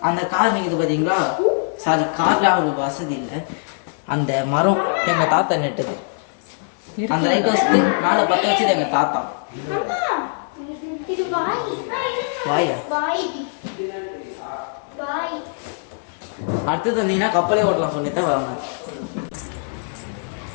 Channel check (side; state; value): right; silent; 64 dB below the other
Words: அந்த கார் நிக்குது பாத்தீங்களா? சாரி, கார்ல ஒரு வசதி இல்லை. அந்த மரம் எங்க தாத்தா நெட்டது. அந்த லைட் ஹவுஸ்க்கு மேல பத்த வச்சது எங்க தாத்தா. இது வாய். வாயா? வாய். வாய். அடுத்தது வந்தீங்கன்னா கப்பலே ஓட்டலாம் சொல்லித்தான் வாங்க.